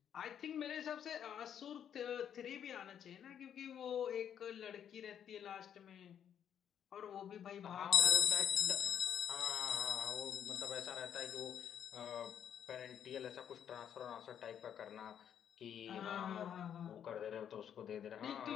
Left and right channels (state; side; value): quieter; right; 9.1 dB